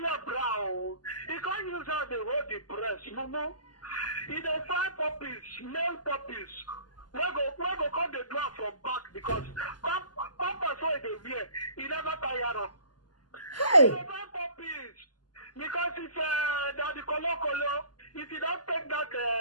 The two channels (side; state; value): right; late; 0.70 ms